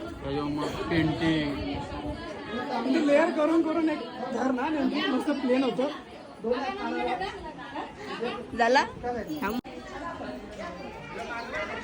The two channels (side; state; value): both; identical; correlation 1.00